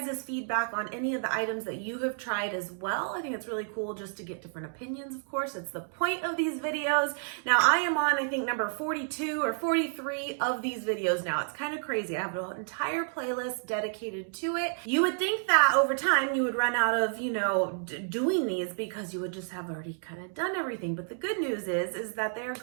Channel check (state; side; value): silent; left; digital silence